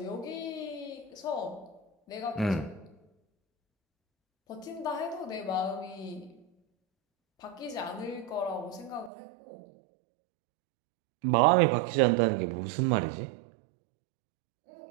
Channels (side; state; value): left; drops out; at 9.1 s